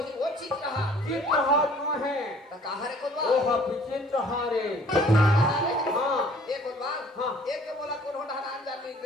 वो चित्रहार चित्रहार न है तो कहाँ रे कोदवा वो चित्रहारे हाँ एक कोदवा हाँ। एक के बोला कौन होना नाम जाने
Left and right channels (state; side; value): normal; both; correlation 0.55